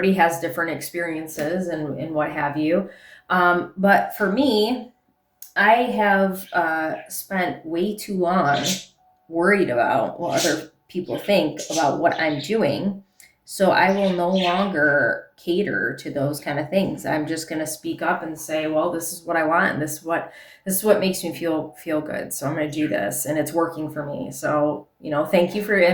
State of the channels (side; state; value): both; identical; correlation 1.00